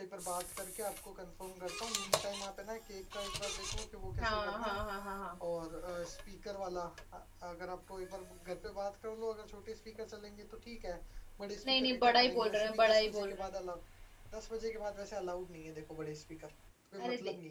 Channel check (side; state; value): both; identical; correlation 1.00